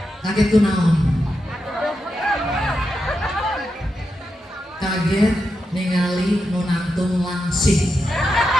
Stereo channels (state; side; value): normal; both; correlation 0.87